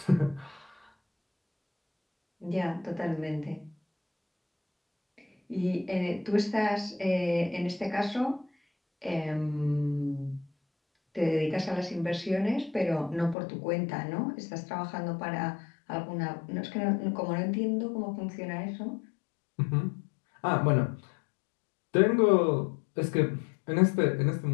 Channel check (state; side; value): drops out; right; at 13.4 s